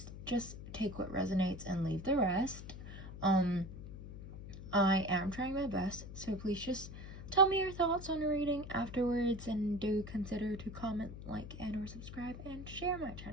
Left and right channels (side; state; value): left; noise; hum, 11 dB below the sound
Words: just take what resonates and leave the rest. I am trying my best, so please just tell me your thoughts on the reading afterwards, and do consider to comment, like, and or subscribe, and share my